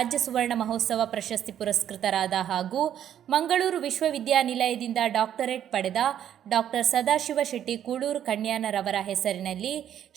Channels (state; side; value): quieter; left; 10.2 dB